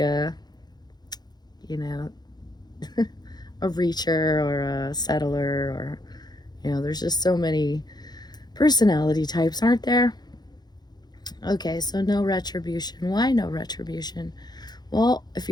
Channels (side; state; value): right; late; 0.20 ms